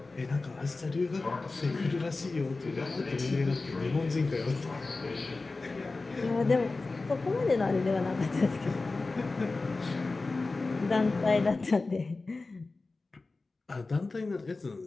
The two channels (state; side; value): quieter; right; 3.6 dB